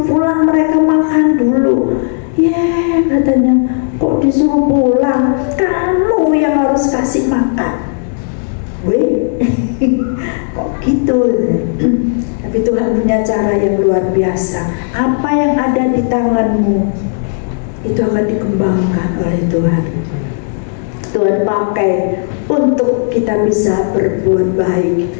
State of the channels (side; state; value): right; silent; digital silence